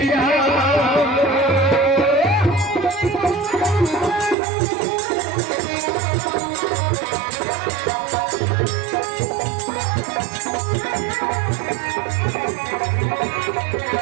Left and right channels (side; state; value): left; drops out; at 4.4 s